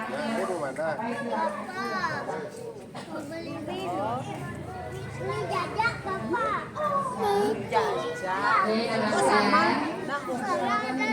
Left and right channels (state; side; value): identical; both; correlation 1.00